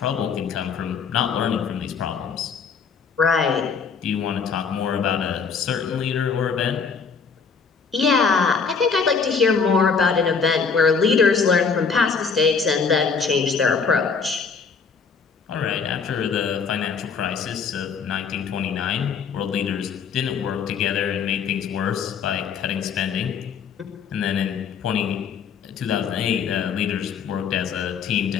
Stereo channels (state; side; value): quieter; right; 5.7 dB